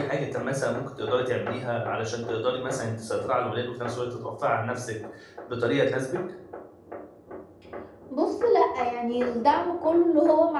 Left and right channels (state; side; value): identical; both; correlation 1.00